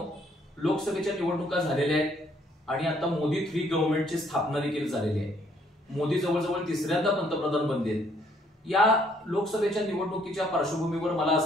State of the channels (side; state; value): both; normal; correlation 0.66